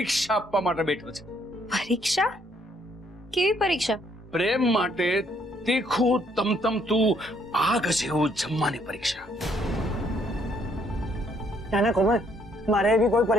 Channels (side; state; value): both; normal; correlation 0.68